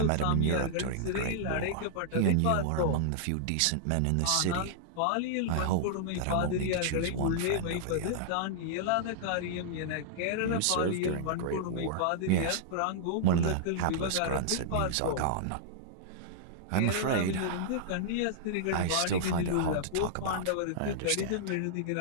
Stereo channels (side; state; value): both; different; correlation -0.01